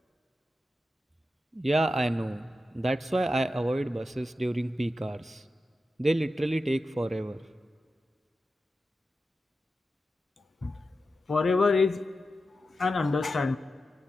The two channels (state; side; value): normal; both; correlation 0.91